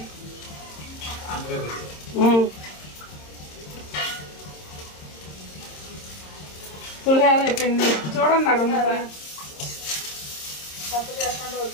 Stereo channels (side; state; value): right; late; 26 ms